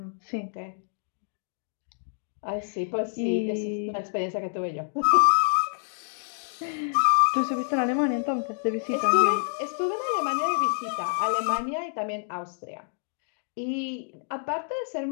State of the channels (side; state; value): right; silent; digital silence